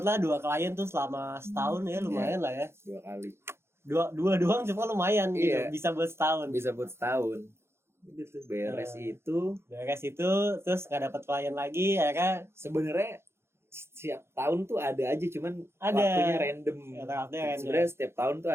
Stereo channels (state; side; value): late; left; 0.12 ms